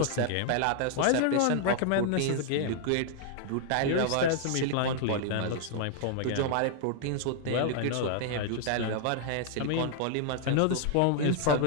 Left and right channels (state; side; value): different; both; correlation 0.00